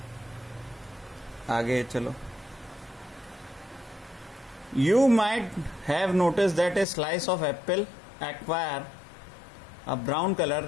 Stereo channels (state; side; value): drops out; right; at 6.9 s